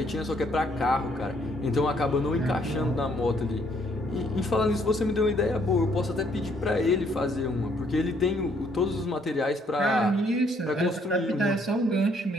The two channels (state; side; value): normal; both; correlation 0.67